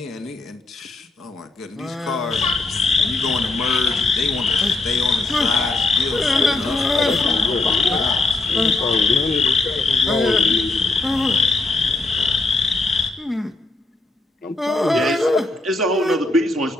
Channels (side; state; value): right; quieter; 3.0 dB